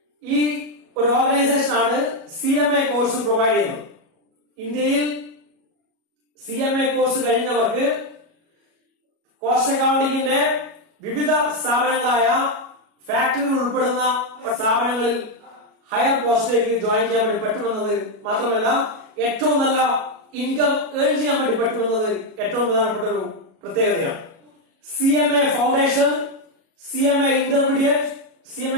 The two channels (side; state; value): left; late; 37 ms